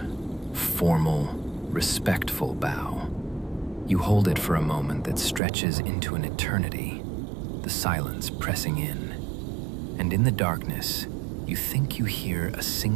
formal, respectful bow. You hold it for a moment that stretches into an eternity, the silence pressing in. And in the darkness, you think you hear a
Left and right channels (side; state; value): left; drops out; at 5.4 s